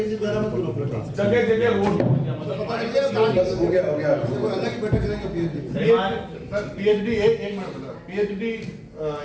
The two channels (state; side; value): identical; both; correlation 1.00